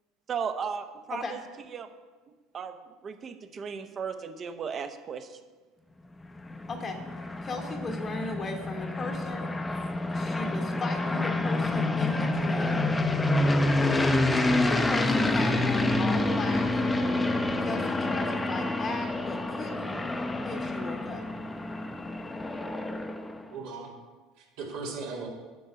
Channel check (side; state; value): both; normal; correlation 0.85